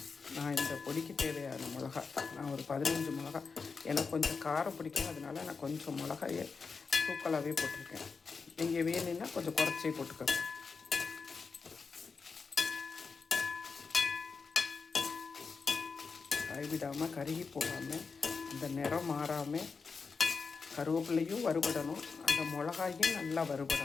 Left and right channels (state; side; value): quieter; right; 5.0 dB